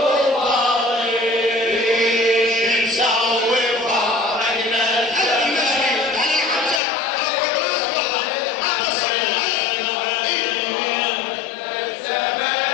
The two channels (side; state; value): right; drops out; at 6.8 s